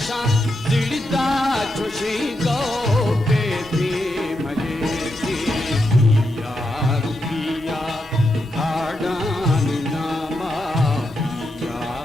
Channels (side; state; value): both; normal; correlation 0.84